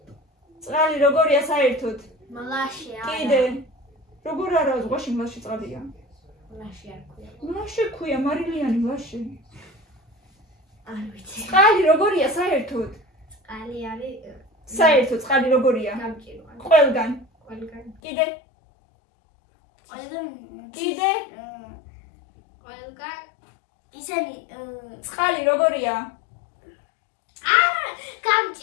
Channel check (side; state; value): right; drops out; at 18.0 s